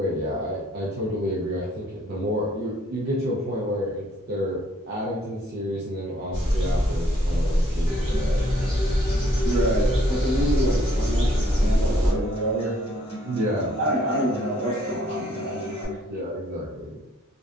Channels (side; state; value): both; normal; correlation 0.64